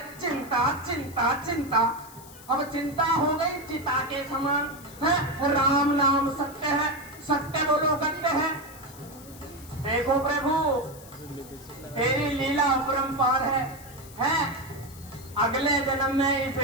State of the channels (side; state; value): left; noise; hiss, 20 dB below the sound